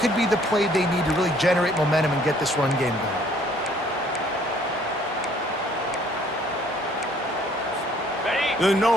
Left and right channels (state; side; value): normal; both; correlation 0.60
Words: could be the play they need to really generate momentum and get this run game going. The